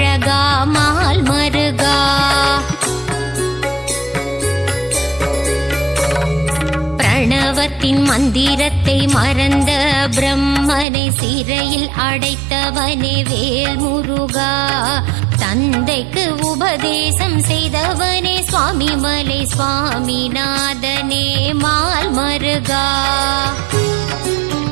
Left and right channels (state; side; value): drops out; left; at 10.9 s